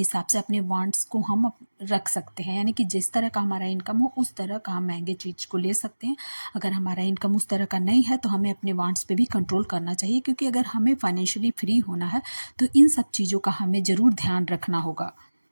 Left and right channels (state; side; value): inverted; both; correlation -1.00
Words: से अपने वांट्स को हम रख सकते हैं। यानी कि जिस तरह का हमारा इनकम हो उस तरह का हम महंगे चीज़ को ले सकते हैं। अगर हमारा इनकम उस तरह का नहीं है तो हमें अपने वांट्स पे भी कंट्रोल करना चाहिए, क्योंकि अगर हमें फाइनेंशियली फ्री होना है तो इन सब चीज़ों का हमें ज़रूर ध्यान रखना होगा।